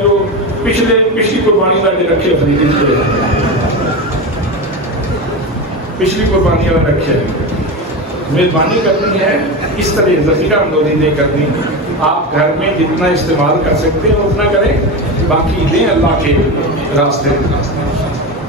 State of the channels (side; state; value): both; normal; correlation 0.20